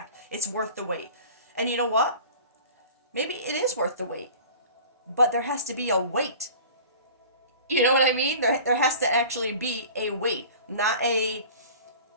It's worth the wait. And you know what? Maybe it is worth the wait, but there has to be a wait. You know what I mean? There has to actually be a wait, not a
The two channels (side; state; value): both; inverted; correlation -0.41